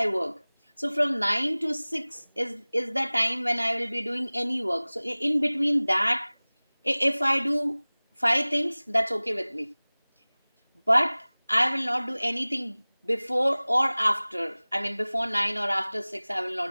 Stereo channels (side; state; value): both; inverted; correlation -1.00